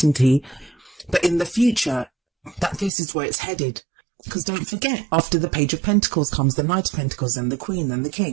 But in the future, that this is where it's headed. Because don't forget, after the Page of Pentacles comes the Knight of Pentacles, and the Queen, and the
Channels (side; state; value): left; drops out; at 2.9 s